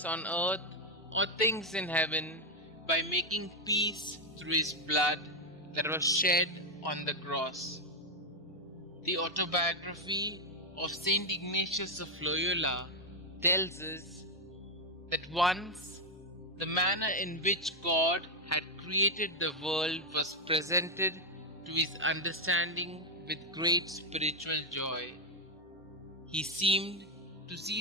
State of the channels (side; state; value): both; normal; correlation 0.02